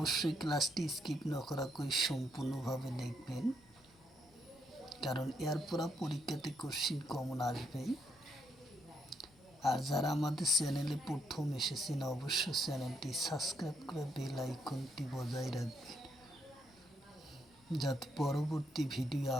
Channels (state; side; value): normal; both; correlation 0.75